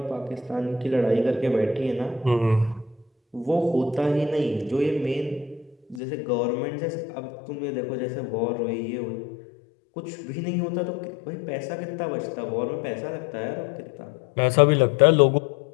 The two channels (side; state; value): right; drops out; at 6.0 s